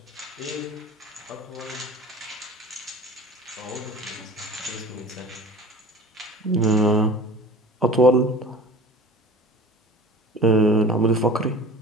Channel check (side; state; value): both; normal; correlation 0.40